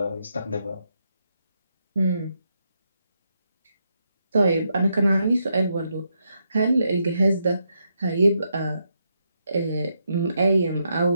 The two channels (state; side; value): inverted; both; correlation -0.81